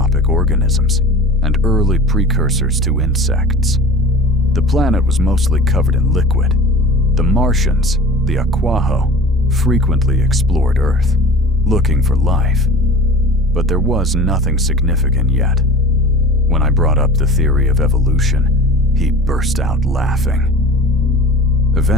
organisms and early precursors to insects. The planet was mostly covered in liquid. The Martians, the Aquaho, frequently explored Earth, looking for life. But there was nothing significant yet. When I brought up the theory of evolution, he burst out laughing.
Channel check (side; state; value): both; normal; correlation 0.39